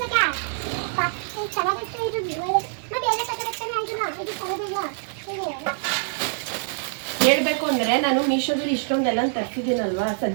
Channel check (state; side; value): silent; left; digital silence